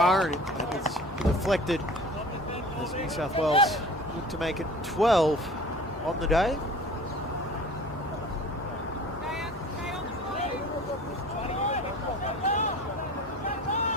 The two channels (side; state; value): both; normal; correlation 0.43